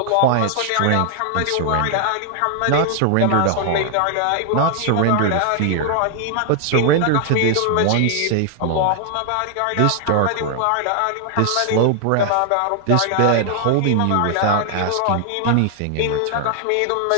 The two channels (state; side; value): different; both; correlation 0.00